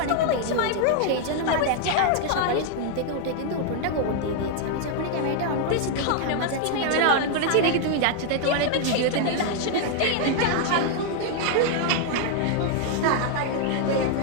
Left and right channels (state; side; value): different; both; correlation 0.00